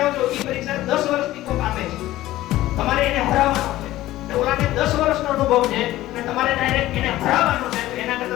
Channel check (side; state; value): right; quieter; 15.7 dB